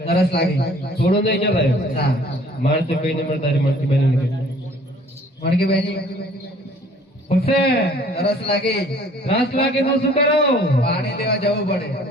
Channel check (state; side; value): normal; both; correlation 0.54